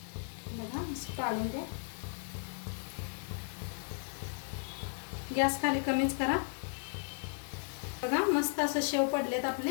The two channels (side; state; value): right; silent; 54 dB below the other